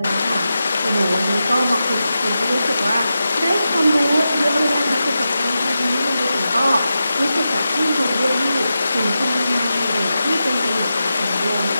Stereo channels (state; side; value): inverted; both; correlation -0.91